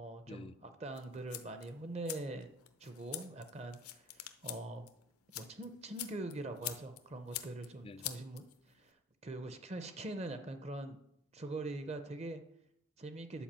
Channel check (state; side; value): normal; both; correlation 0.49